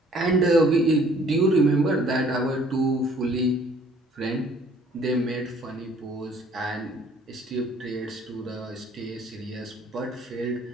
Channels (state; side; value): normal; both; correlation 0.58